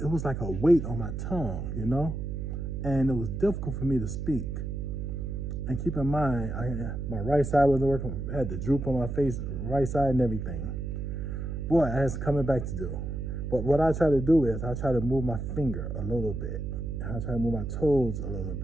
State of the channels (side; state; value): right; noise; hum, 4 dB below the sound